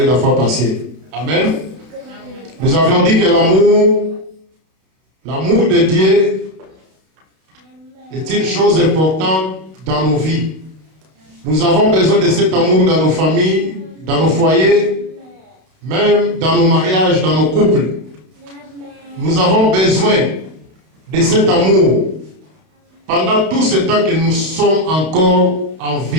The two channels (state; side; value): late; left; 32 ms